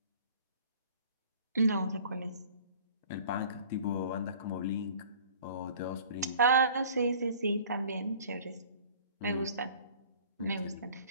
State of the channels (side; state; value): both; inverted; correlation -0.49